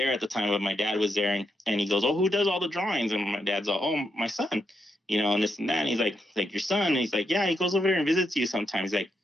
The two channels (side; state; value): both; normal; correlation 0.81